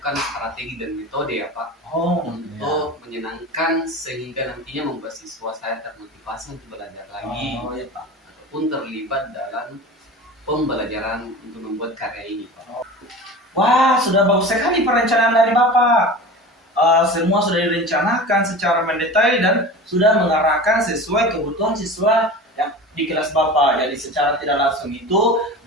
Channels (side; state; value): both; normal; correlation 0.34